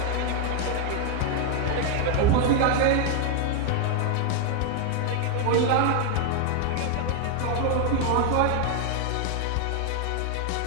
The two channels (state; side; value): different; both; correlation 0.01